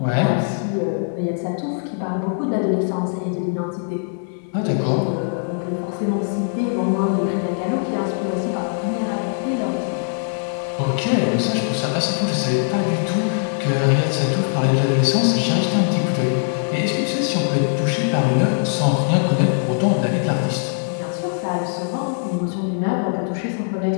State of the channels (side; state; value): right; silent; digital silence